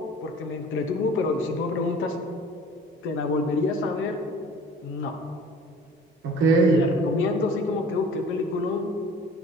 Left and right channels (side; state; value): both; normal; correlation 0.47